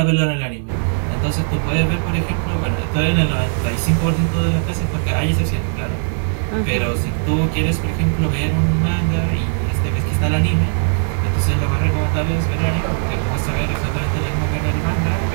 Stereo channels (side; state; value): left; silent; 67 dB below the other